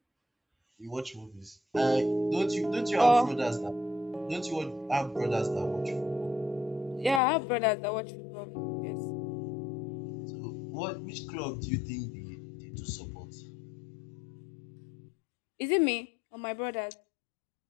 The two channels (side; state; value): right; drops out; at 7.2 s